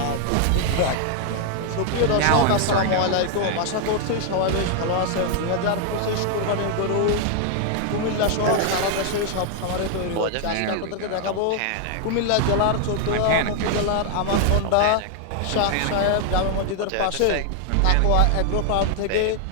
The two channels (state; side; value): different; both; correlation 0.00